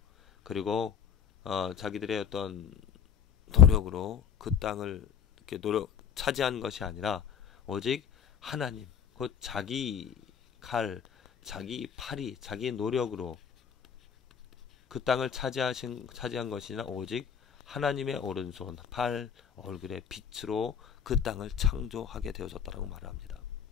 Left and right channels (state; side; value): quieter; right; 7.9 dB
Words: 그리고 자기들의 어떤 노력으로 그 땅을 이렇게 차지한 것이 아니라 오직 하나님, 곧 자기 칼, 자기 팔이, 자기 노력으로 그 땅을 차지한 것이 아니라 오직 하나님의 오른손, 팔, 얼굴의 빛으로 그 땅을 창조하게 되어졌다라고 말을 합니다.